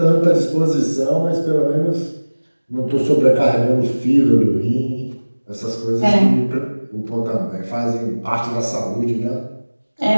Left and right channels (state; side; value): inverted; both; correlation -1.00